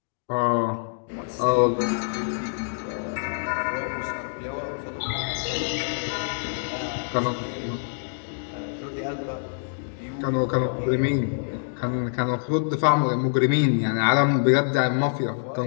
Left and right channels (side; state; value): right; silent; digital silence